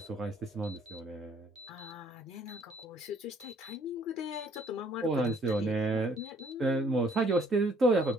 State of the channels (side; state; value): both; normal; correlation 0.61